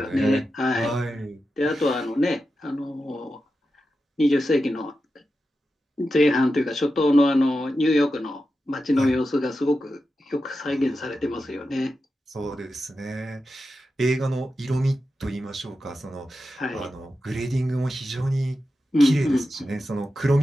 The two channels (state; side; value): normal; both; correlation 0.90